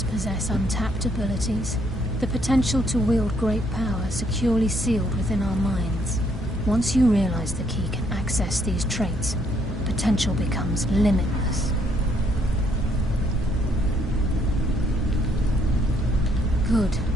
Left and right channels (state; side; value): normal; both; correlation 0.69